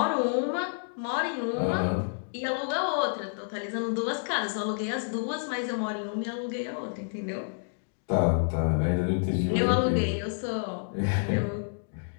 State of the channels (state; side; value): silent; right; digital silence